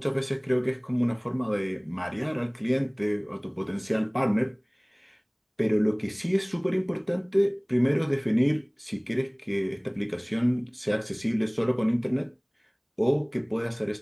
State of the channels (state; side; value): identical; both; correlation 1.00